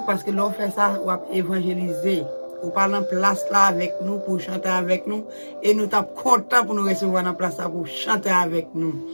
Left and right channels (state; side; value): inverted; both; correlation -1.00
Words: parce que l'on fait ça ou évangéliser. Ou parler en place là avec nous pour chanter avec nous et nous sommes contents pour nous recevoir en place là pour chanter avec nous.